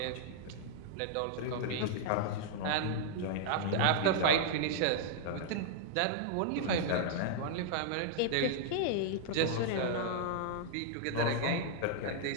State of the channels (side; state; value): both; different; correlation -0.01